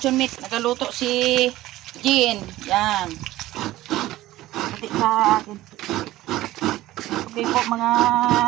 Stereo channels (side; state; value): left; quieter; 16.1 dB